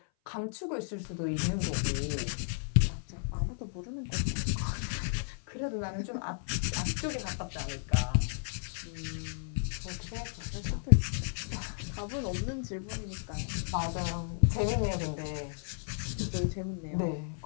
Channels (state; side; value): silent; right; 55 dB below the other